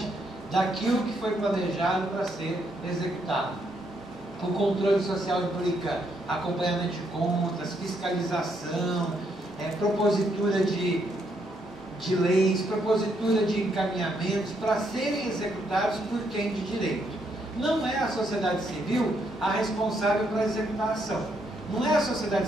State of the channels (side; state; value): left; noise; rumble, 30 dB below the sound